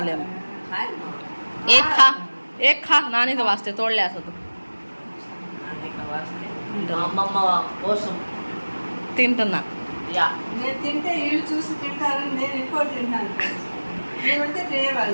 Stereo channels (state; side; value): inverted; both; correlation -1.00